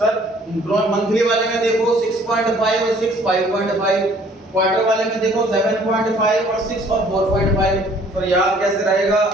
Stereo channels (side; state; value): both; normal; correlation 0.57